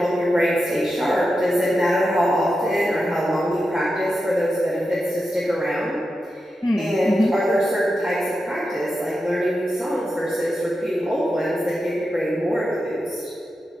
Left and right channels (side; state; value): both; normal; correlation 0.89